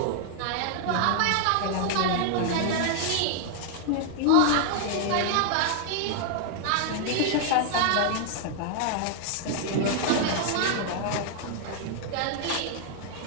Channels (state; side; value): different; both; correlation 0.00